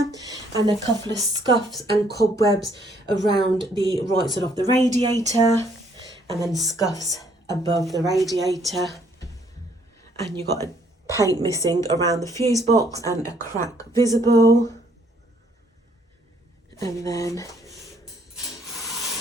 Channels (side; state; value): both; normal; correlation 0.66